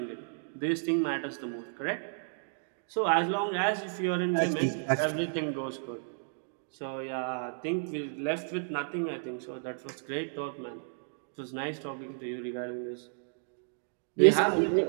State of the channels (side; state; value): left; silent; digital silence